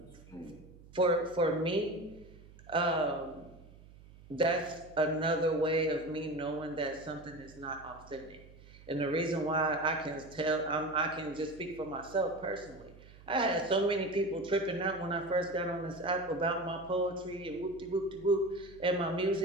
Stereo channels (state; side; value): noise; right; hum, 21 dB below the sound